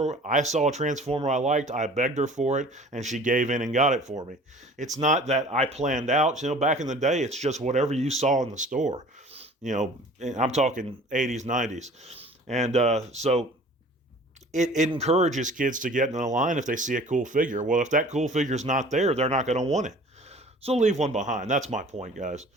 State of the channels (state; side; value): normal; both; correlation 0.46